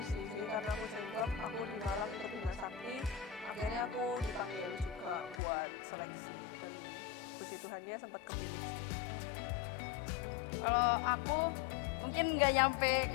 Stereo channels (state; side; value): drops out; right; at 5.4 s